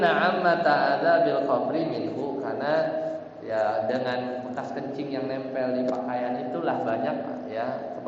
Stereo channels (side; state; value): both; identical; correlation 1.00